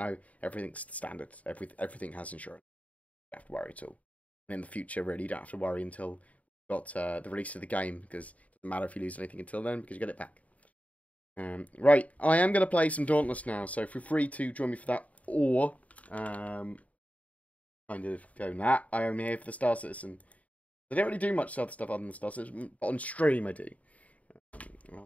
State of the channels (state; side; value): late; right; 0.069 ms